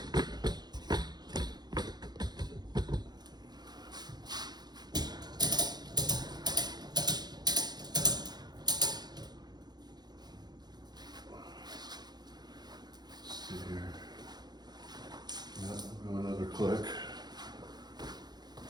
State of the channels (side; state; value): left; late; 0.20 ms